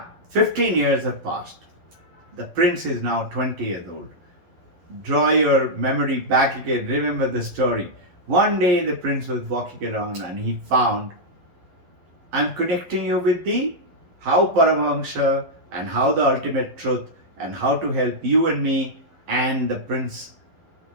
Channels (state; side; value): late; left; 11 ms